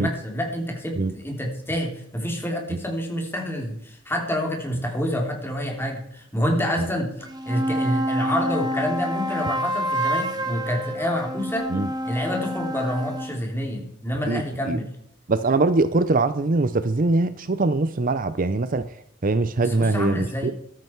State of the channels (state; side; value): normal; both; correlation 0.56